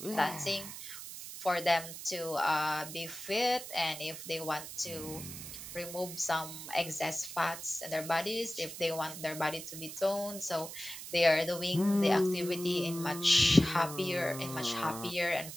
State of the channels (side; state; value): right; noise; hiss, 10 dB below the sound